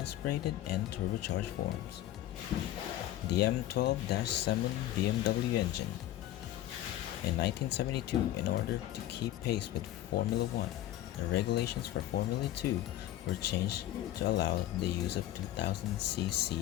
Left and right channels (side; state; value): right; quieter; 13.6 dB